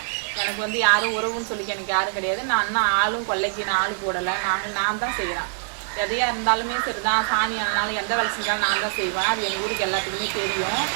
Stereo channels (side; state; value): left; silent; digital silence